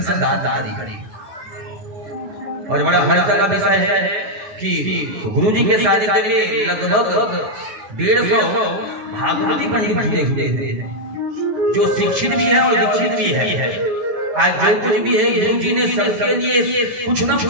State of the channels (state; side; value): late; left; 9.3 ms